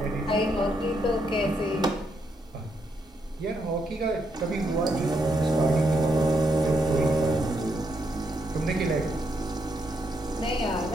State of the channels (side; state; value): both; normal; correlation 0.78